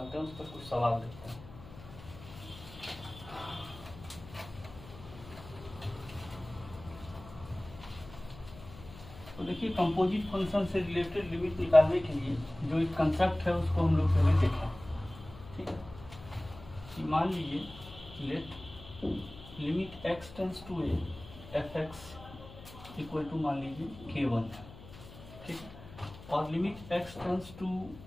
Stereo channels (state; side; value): noise; left; hum, 17 dB below the sound